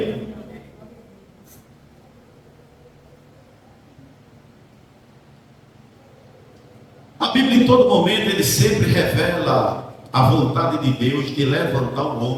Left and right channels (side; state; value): both; identical; correlation 1.00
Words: A Bíblia em todo momento ele sempre revela a vontade de Deus de levantar o